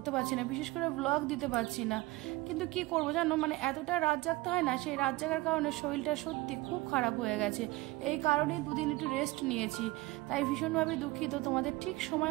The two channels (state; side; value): quieter; left; 20.3 dB